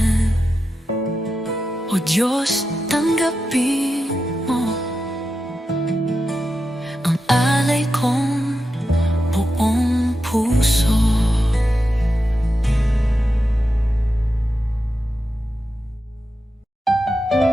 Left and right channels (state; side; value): normal; both; correlation 0.89